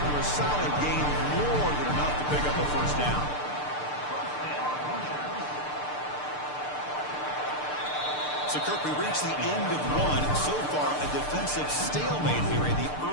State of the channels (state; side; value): late; right; 6.7 ms